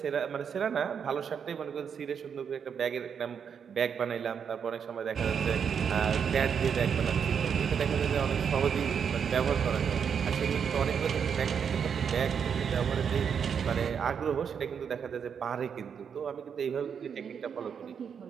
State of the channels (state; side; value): quieter; left; 7.2 dB